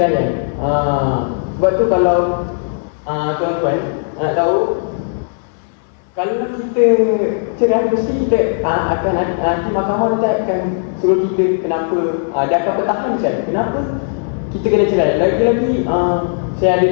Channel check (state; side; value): silent; right; 63 dB below the other